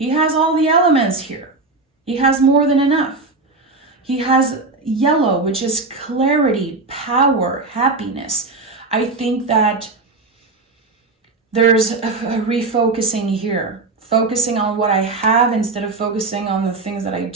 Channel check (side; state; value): left; quieter; 3.6 dB